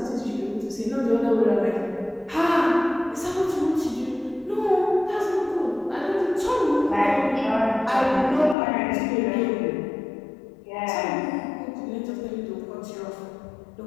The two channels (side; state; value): right; drops out; at 8.6 s